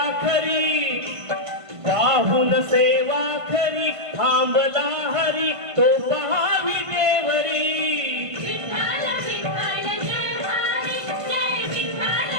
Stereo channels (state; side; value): late; left; 1.5 ms